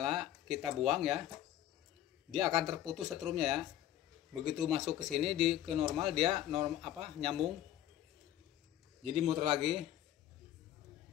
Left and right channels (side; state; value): right; quieter; 12.3 dB